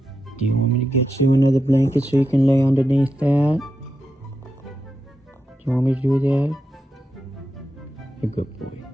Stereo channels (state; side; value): normal; both; correlation 0.87